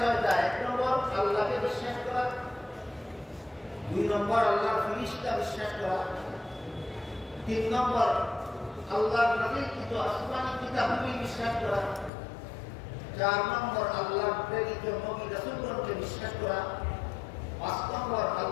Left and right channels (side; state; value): right; drops out; at 12.1 s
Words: ১ নম্বর আল্লাহকে বিশ্বাস করা, ২ নম্বর আল্লাহর ফেরেশতা বিশ্বাস করা, ৩ নম্বর আল্লাহর নাযিলকৃত আসমানী কিতাবগুলি বিশ্বাস করা, ৪ নম্বর আল্লাহর প্রেরিত নবী রাসূলগণকে বিশ্বাস করা, ৫ নম্বর